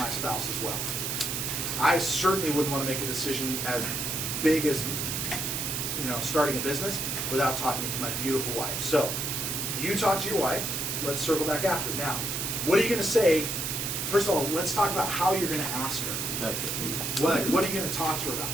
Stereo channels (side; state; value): right; noise; hiss, 2 dB below the sound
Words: spouse as well. I certainly wouldn't want to make a decision as big as, starting a business without talking to my beautiful wife. So you talk to your wife. Let's circle back after. Now, what are you going to say? First of all, let's talk about how you're going to ask her. That's it. What are you going to talk to her about?